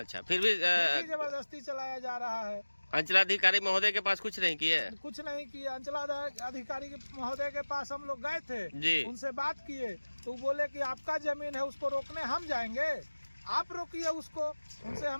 फिर भी जबरदस्ती चलाया जा रहा है। अंचलाधिकारी महोदय के पास कुछ नहीं किए? कुछ नहीं किया। अंचलाधिकारी महोदय के पास हम लोग गए थे जी। उनसे बात किए तो बोले कि आपका जमीन है, उसको रोकने हम जाएंगे, आप रोकिए उसको। उनसे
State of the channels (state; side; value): inverted; both; correlation -1.00